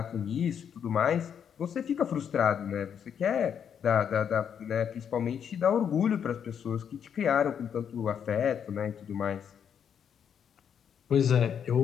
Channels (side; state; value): right; quieter; 8.1 dB